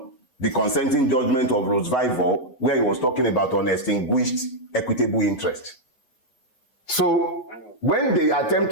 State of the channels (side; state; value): right; late; 8.1 ms